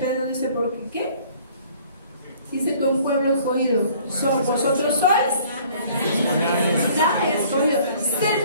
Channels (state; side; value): inverted; both; correlation -0.55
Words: dice, ¿por qué? ¿Qué? Dice que un pueblo escogido, vosotros sois la escogido.